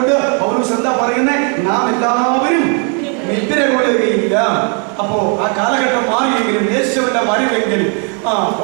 പൗലോസ് എന്താ പറയുന്നത്? നാം എല്ലാവരും നിദ്ര കൊള്ളുകയില്ല. അപ്പോ ആ കാലഘട്ടം മാറിയെങ്കിലും യേശുവിന്റെ വരവെങ്കിൽ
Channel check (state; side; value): quieter; left; 38.8 dB